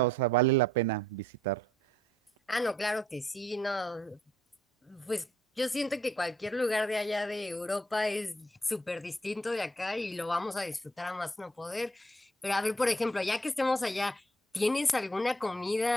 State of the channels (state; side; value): normal; both; correlation 0.66